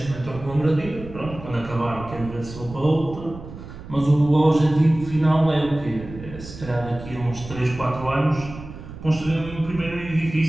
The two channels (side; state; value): right; noise; rumble, 13 dB below the sound